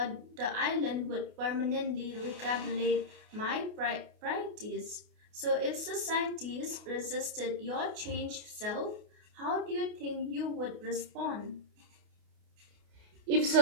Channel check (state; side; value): late; left; 28 ms